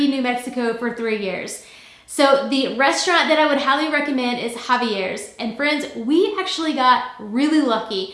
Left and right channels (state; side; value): identical; both; correlation 1.00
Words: New Mexico for 3 years. So the restaurant that I would highly recommend is Javier's. And friends, we actually got really lucky.